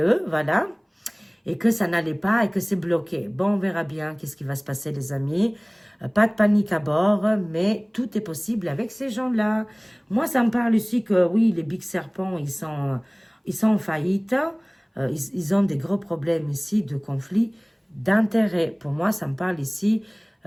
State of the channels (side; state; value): both; identical; correlation 1.00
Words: voilà, et que ça n'allait pas et que c'est bloqué. Bon, on verra bien qu'est-ce qui va se passer, les amis. Pas de panique à bord, mais tout est possible avec ces gens-là. Moi, ça me parle ici que, oui, les Big Serpents, ils sont en faillite. Ils ont des gros problèmes ici de conflit d'intérêts. Pour moi, ça me parle ici